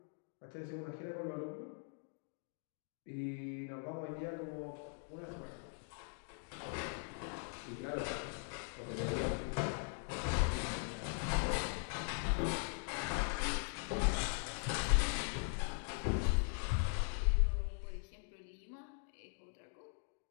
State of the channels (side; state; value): right; silent; 50 dB below the other